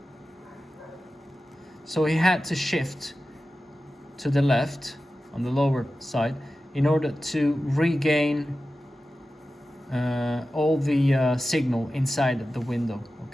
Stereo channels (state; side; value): normal; both; correlation 0.94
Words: So he had to shift to the left on the lower side in order to regain all the signal inside the window,